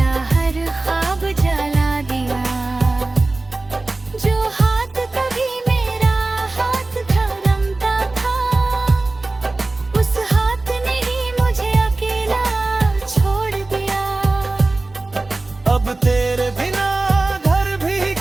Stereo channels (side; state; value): left; quieter; 3.1 dB